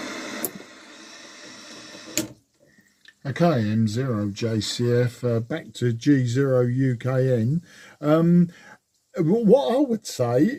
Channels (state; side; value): identical; both; correlation 1.00